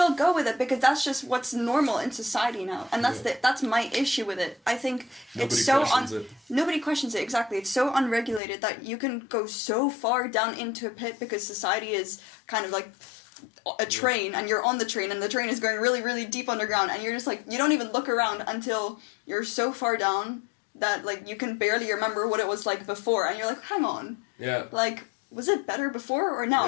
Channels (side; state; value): right; drops out; at 8.4 s